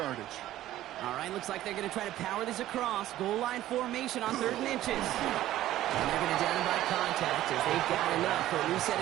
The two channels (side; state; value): left; quieter; 14.0 dB